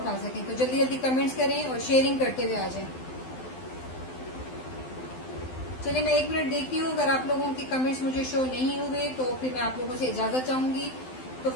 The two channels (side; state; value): right; late; 12 ms